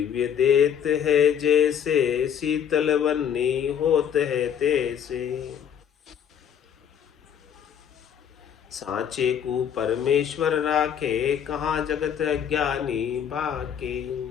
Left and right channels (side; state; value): right; quieter; 8.7 dB